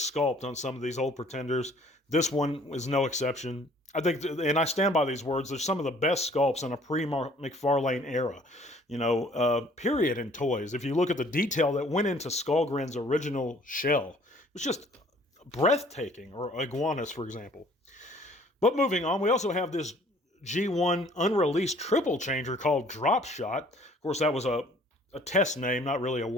on some of these old pretenders. This one is no exception. I think, and I stand by these words, they're some of the best sculpts in a pre-McFarlane era, period, in toys. If you look at the detail that went into Skullgrin's original shell, it was just breathtaking, or Iguanus, for example. But moving on, we also have this G1 unreleased triple changer called Drop Shot. Of course, that was a test name, not really a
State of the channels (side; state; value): both; normal; correlation 0.56